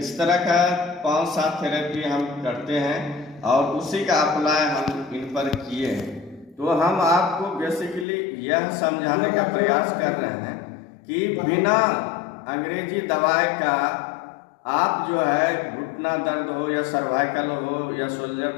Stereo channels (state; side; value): drops out; right; at 8.1 s